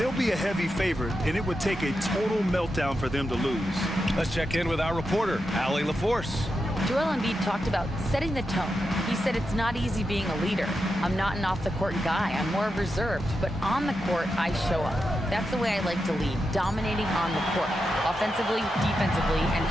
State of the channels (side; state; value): both; normal; correlation 0.88